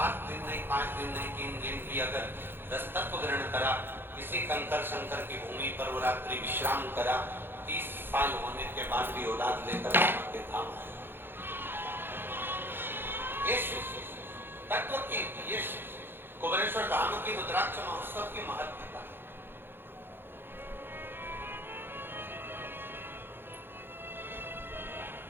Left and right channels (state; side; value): late; left; 0.10 ms